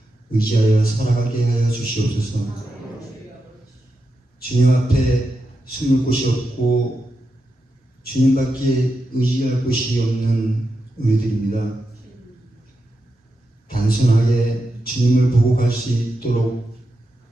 의지하여 살아가게 하여 주시옵소서. 주님 앞에 숨을 곳이 없고 주님밖에 의지할 곳이 없는 우리들입니다. 단순하게 주님을 보고 갈 수 있도록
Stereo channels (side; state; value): both; normal; correlation 0.88